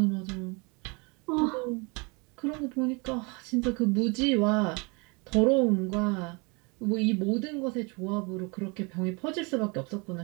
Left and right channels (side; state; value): left; quieter; 30.1 dB